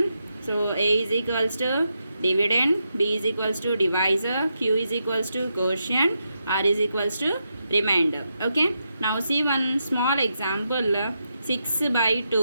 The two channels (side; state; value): both; inverted; correlation -0.84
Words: So A is equals to dividend, B is equals to divisor, Q is equals to quotient, R is equals to remainder. Okay, now see one small example. 6 by